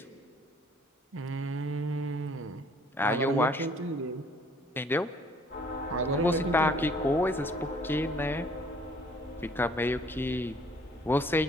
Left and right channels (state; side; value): normal; both; correlation 0.58